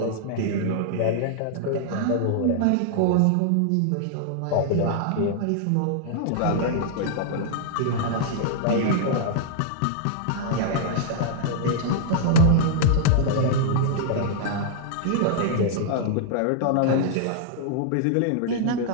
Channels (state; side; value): different; both; correlation -0.01